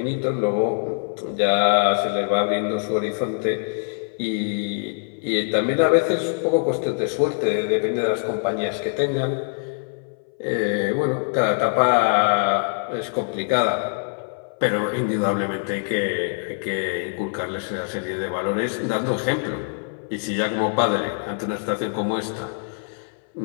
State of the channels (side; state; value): right; silent; 63 dB below the other